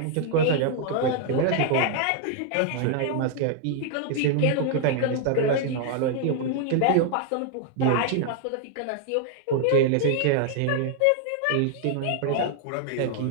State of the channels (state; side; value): different; both; correlation 0.00